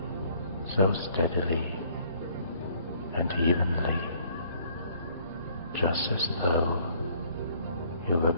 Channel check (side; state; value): both; inverted; correlation -0.61